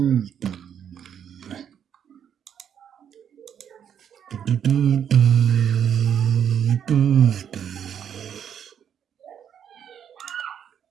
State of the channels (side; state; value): left; quieter; 8.7 dB